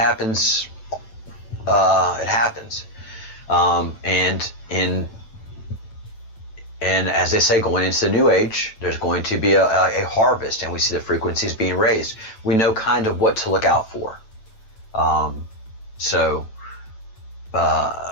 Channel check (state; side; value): late; right; 9.1 ms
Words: It happens. And as they say, going into the new age, there's going to be a harvest, and we see the frequencies being raised. We know kind of what to look out for.